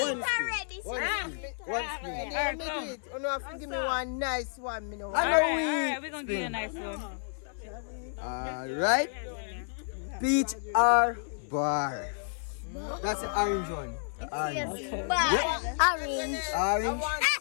One spin. Give me one nice one. All right, we're gonna give you a nice one. Alright. Peach or bar? That's the orange one. Orange. Orange.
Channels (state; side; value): silent; right; 57 dB below the other